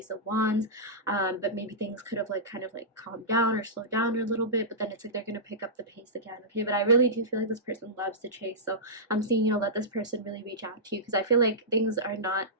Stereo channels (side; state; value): both; normal; correlation -0.15